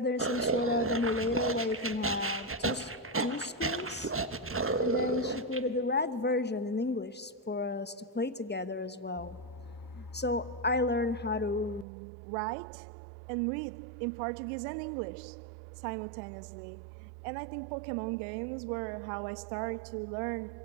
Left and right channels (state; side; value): drops out; left; at 11.9 s